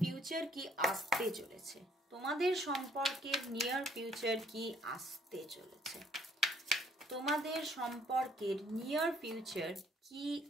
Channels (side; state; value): both; normal; correlation 0.63